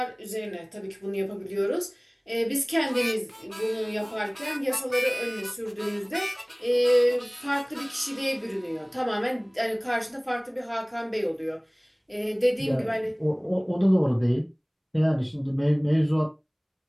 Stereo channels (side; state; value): both; identical; correlation 1.00